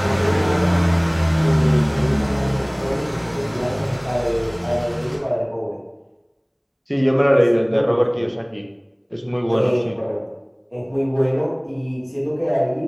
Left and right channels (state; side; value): identical; both; correlation 1.00